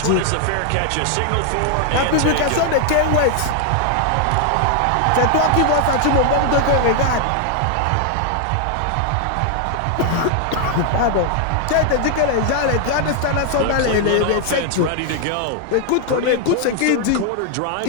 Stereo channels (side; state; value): both; different; correlation 0.00